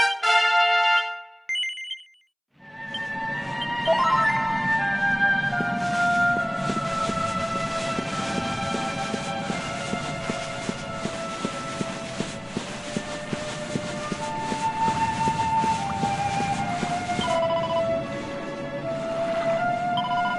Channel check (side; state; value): both; identical; correlation 1.00